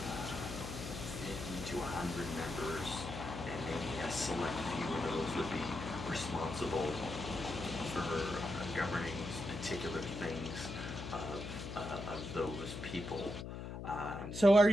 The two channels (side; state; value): left; noise; hum, 7 dB below the sound